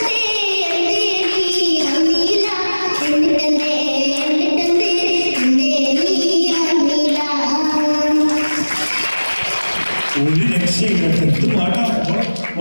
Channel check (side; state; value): both; inverted; correlation -1.00